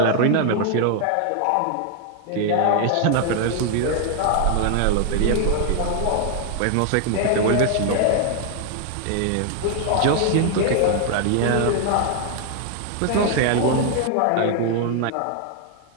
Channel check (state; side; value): different; both; correlation 0.00